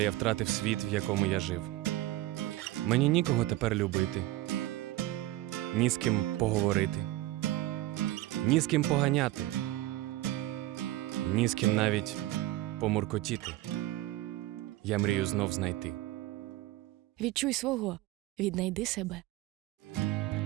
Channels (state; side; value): quieter; left; 16.3 dB